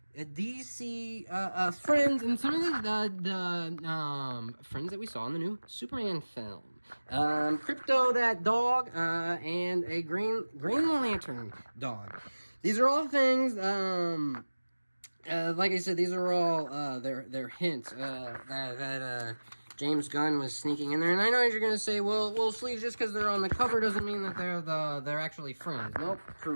DC friends, and some of the friends that we saw in the new Superman film. Krypto, that dog, and a Green Lantern dog. These are all things, like I said, these are all they're hints that James Gunn was sneaking in there. And I know you're gonna say, well, Sleeves, just because they're on the cover doesn't mean that they're actually friends. Nope,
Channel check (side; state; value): both; inverted; correlation -1.00